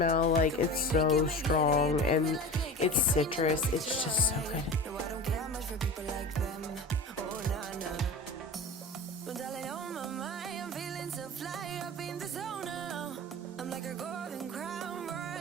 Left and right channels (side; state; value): both; normal; correlation 0.31